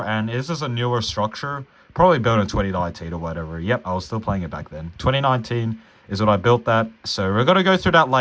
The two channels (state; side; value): identical; both; correlation 1.00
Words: and this is a newer structure. Probably built in 2019 or whatever. Yep, I was still playing it back then. 2019 is when I built that. So we're going to go through that